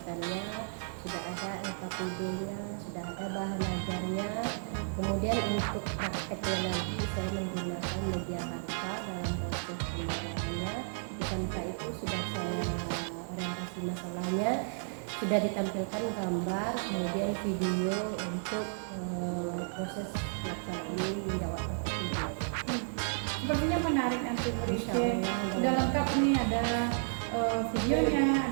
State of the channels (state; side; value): silent; left; 55 dB below the other